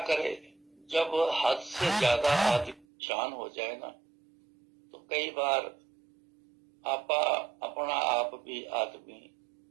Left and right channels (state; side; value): drops out; left; at 2.9 s